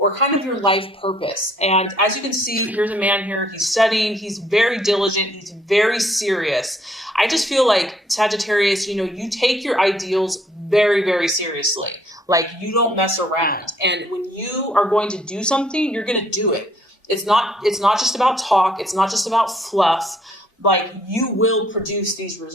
kind of your life purpose. And as you can see, here's a man here. He's studying. He's very diligent. He's very serious. I just feel like Sagittarius, you take your ideals very, very seriously. Like, you don't mess around. And when you are going to do something, you're going to do it. It's not just about talk. It's not just about fluff. Like, you will produce these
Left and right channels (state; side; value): normal; both; correlation 0.64